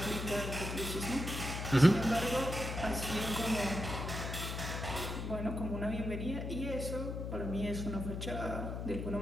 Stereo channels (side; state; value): left; noise; hum, 4 dB below the sound